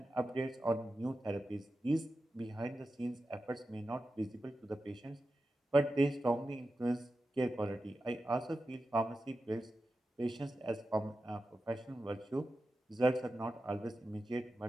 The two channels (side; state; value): both; normal; correlation 0.91